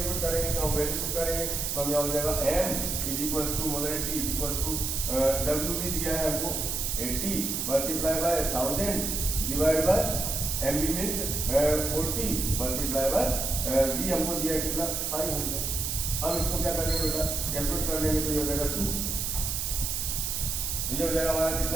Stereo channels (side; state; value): right; noise; hiss, 1 dB below the sound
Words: करेंगे, तो हम वैल्यू पुट करेंगे, तो हम यहाँ हो जाएगा M is equal to molarity is equal to WB दिया है हमको 80 multiply by 1000 divide by MB means 40 multiply by V हमको दिया है कितना 500। हम इसको क्या करेंगे बेटा, कैलकुलेट कर लेंगे, तो ये हो जाएगा 2, ये हो जाएगा हमारा